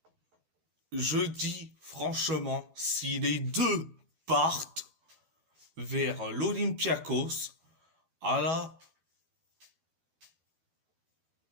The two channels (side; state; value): left; late; 12 ms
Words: Je dis franchement, si les deux partent vers l'Olympiakos, alors